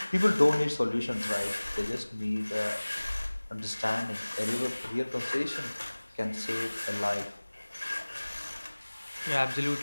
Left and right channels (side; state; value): both; inverted; correlation -1.00